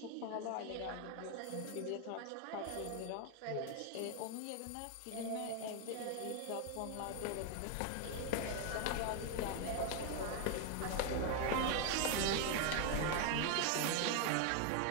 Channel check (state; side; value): different; both; correlation 0.01